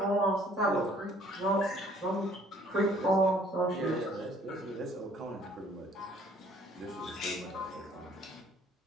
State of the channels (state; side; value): normal; both; correlation 0.58